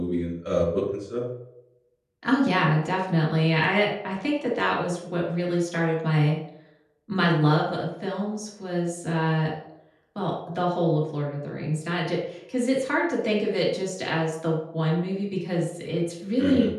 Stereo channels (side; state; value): both; identical; correlation 1.00